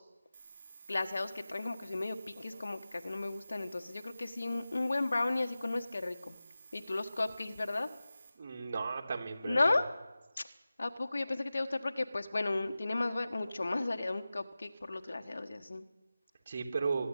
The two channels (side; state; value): both; inverted; correlation -0.96